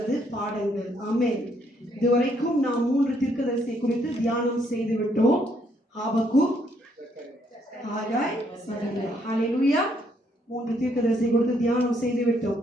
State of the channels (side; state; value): both; normal; correlation 0.71